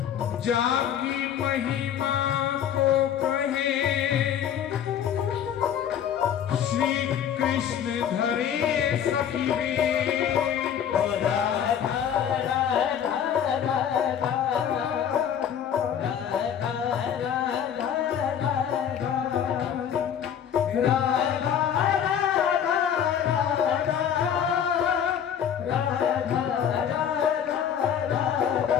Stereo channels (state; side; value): quieter; right; 8.9 dB